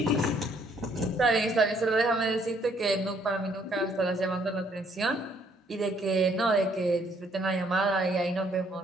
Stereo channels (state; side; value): normal; both; correlation 0.66